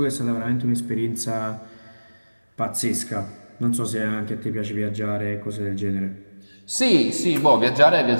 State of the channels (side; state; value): both; inverted; correlation -1.00